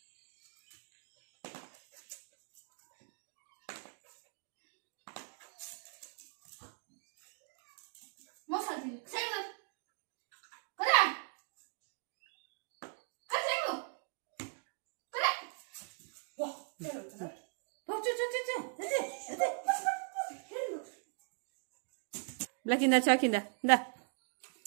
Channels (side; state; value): left; silent; 52 dB below the other